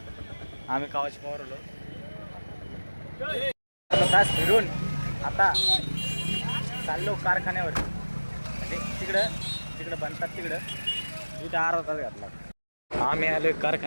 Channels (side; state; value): both; inverted; correlation -1.00